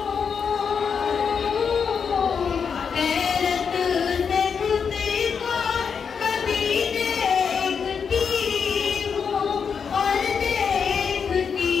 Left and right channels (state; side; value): quieter; right; 6.4 dB